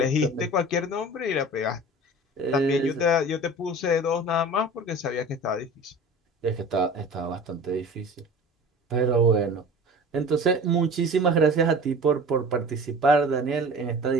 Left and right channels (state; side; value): normal; both; correlation 0.39